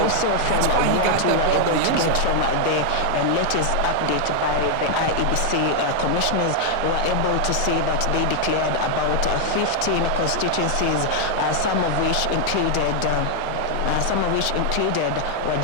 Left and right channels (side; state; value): both; different; correlation 0.00